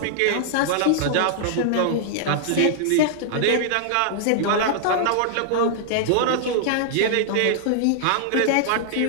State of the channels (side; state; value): both; different; correlation -0.01